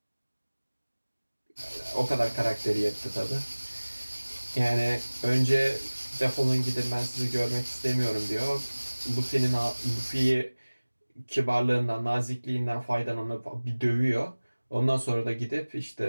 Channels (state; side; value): inverted; both; correlation -1.00